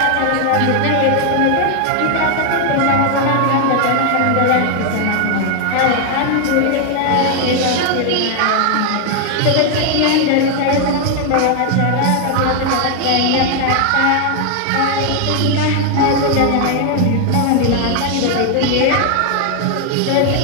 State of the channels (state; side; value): different; both; correlation 0.00